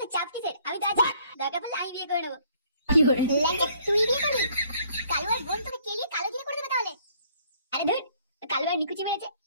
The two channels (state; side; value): inverted; both; correlation -0.62